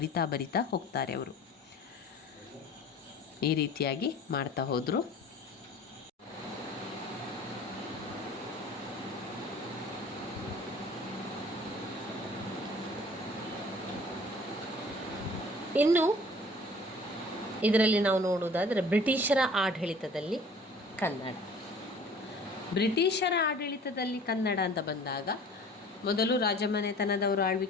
ಹೋಗ್ತಾರೆ ಅವರು. ಈ ರೀತಿಯಾಗಿ ಮಾಡ್ತಾ ಹೋದರು. ಇನ್ನು ಇದರಲ್ಲಿ ನಾವು ನೋಡುವುದಾದರೆ ಬ್ರಿಟಿಷರ ಆಡಳಿತದಲ್ಲಿ ಕನ್ನಡ. ಬ್ರಿಟಿಷರ ಆಡಳಿತದಲ್ಲಿ ಕನ್ನಡ ಅಂತ ಬಂದಾಗ ಮೊದಲು ರಾಜಮನೆತನದವರು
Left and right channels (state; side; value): normal; both; correlation 0.48